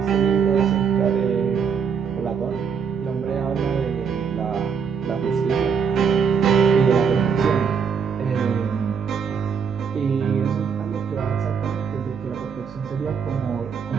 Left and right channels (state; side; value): quieter; left; 6.5 dB